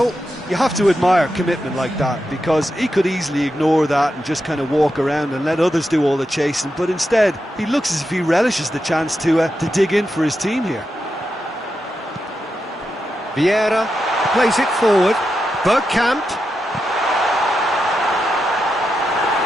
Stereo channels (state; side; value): normal; both; correlation 0.87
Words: You have to admire commitment like that, because he could easily ignore that and just kind of walk around and let others do all the chasing, but instead he looks as if he relishes the chance to dig in for his team here. Vieira plays it forward. Bergkamp.